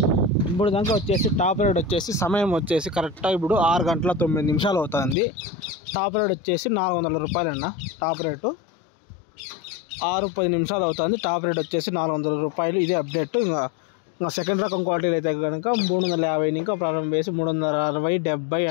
ఇప్పుడు దాకా వచ్చేసి టాప్ రేట్ వచ్చేసి సమయం వచ్చేసి కరెక్ట్గా ఇప్పుడు 6 గంటల 9 నిమిషాలు అవుతుంది. టాప్ రేట్ వచ్చేసి 400 రూపాయలన్న. టాప్ రేటు 6:10 నిమిషాలు అవుతుంది. టాప్ రేట్ వచ్చేసి 400 రూపాయలు. ఇదే అప్డేట్. ఇంకా సెకండ్ రకం క్వాలిటీలు అయితే కనుక 350 ఇంకా ప్రారంభం వేసి 360, 70,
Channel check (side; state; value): right; drops out; at 5.2 s